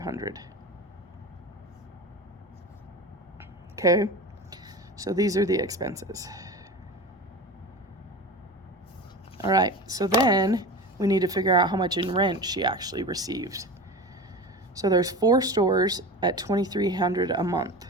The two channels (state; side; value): normal; both; correlation 0.30